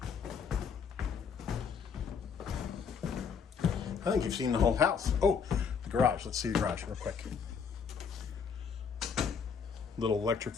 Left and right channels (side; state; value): right; quieter; 6.3 dB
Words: I think you've seen the whole house. Oh, the garage. Let's see the garage real quick. Little electric